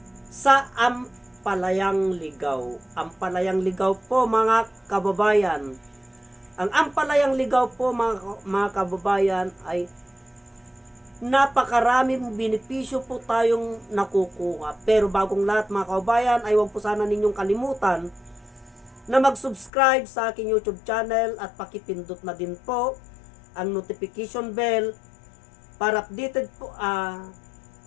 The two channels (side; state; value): right; drops out; at 19.7 s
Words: sa ampalayang ligaw. Ampalayang ligaw po mga kababayan. Ang ampalayang ligaw po mga kababayan ay napakaraming benepisyo po tayong nakukuha. Pero bagong lahat mga kaubayan ay huwag po sana ninyong kalimutan na mag-subscribe sa aking YouTube channel at pakipindot na din po ang notification bell para updated